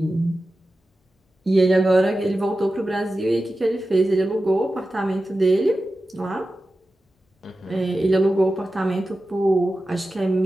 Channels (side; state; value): both; normal; correlation 0.93